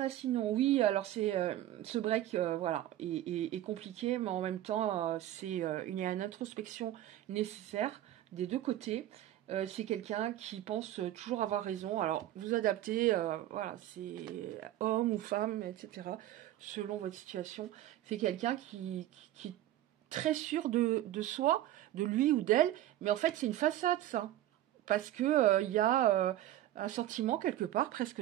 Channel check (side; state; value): left; quieter; 13.6 dB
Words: sinon? Oui, alors c'est ce break, voilà, est compliqué, mais en même temps, il y a une introspection nécessaire des deux côtés. C'est quelqu'un qui pense toujours avoir raison. Alors, vous adaptez, voilà, c'est homme ou femme, etc., selon votre situation. C'est quelqu'un qui est très sûr de soi, de lui ou d'elle, mais en fait, c'est une façade, ça. Parce que il y a un sentiment, quelque part, presque